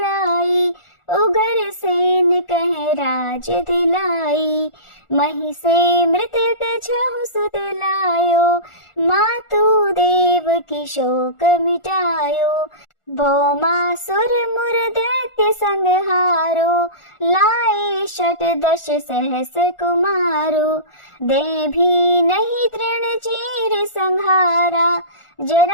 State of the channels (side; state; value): right; late; 1.4 ms